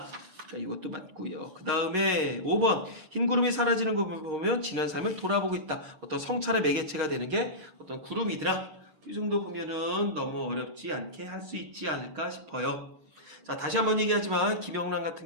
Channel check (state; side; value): late; left; 11 ms